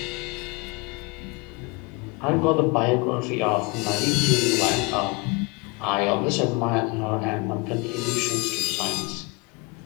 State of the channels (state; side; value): quieter; right; 28.2 dB